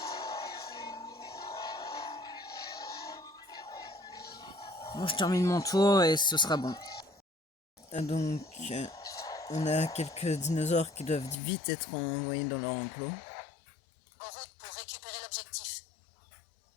Bon, je termine mon tour et ce sera bon. Donc, on a quelques dinosaures qui doivent vite être envoyés dans leur enclos. En route pour récupérer l'objectif.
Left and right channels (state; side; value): drops out; right; at 11.4 s